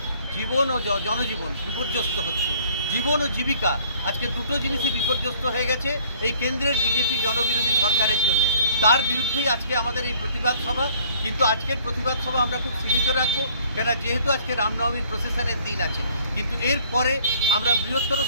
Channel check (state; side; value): inverted; both; correlation -0.57